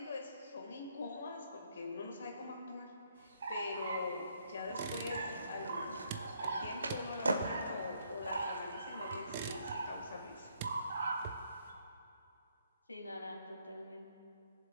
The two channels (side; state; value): both; inverted; correlation -0.70